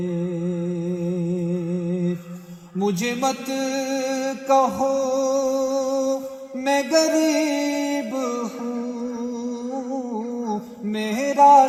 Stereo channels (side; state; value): both; identical; correlation 1.00